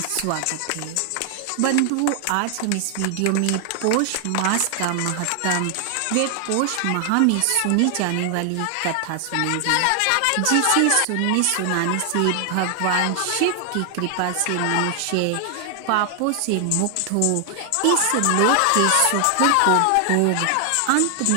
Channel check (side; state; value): both; different; correlation 0.00